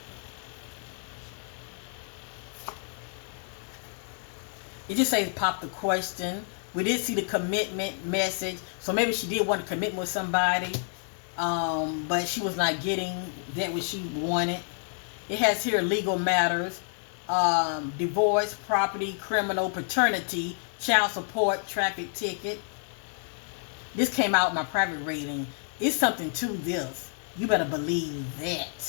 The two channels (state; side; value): silent; right; 59 dB below the other